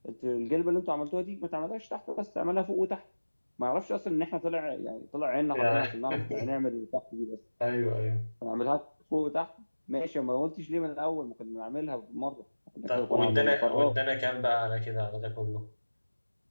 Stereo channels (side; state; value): both; inverted; correlation -1.00